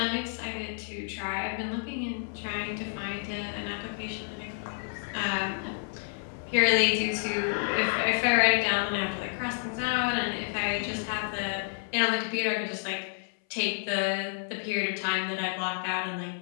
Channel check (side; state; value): right; silent; 58 dB below the other